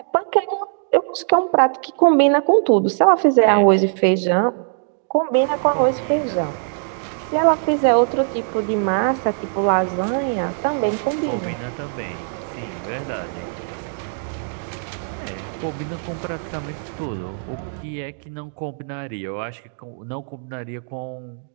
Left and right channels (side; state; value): left; silent; digital silence